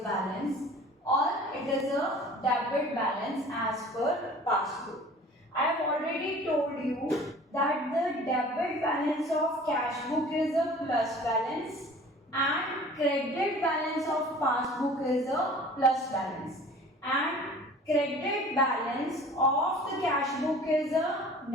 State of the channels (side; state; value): both; normal; correlation 0.46